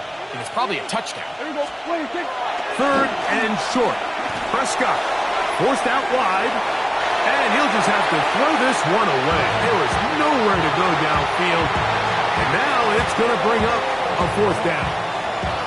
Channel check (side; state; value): both; identical; correlation 1.00